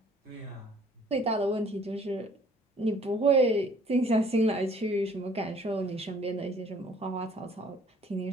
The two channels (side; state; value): both; normal; correlation 0.57